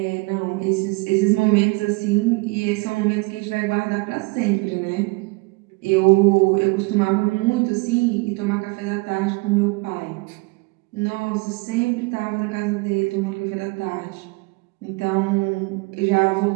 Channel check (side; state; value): left; quieter; 26.7 dB